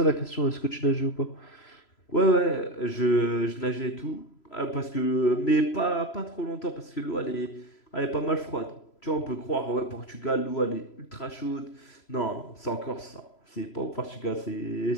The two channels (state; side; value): late; right; 3.0 ms